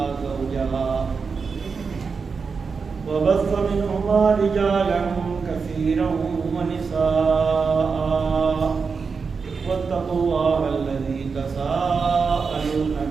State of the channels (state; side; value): quieter; left; 5.2 dB